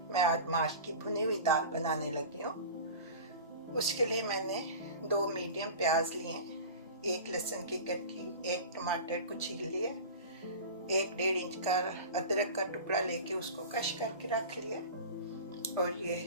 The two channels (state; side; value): inverted; both; correlation -0.35